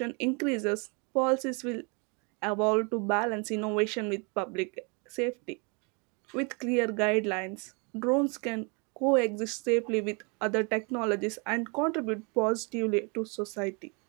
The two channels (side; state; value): left; quieter; 33.0 dB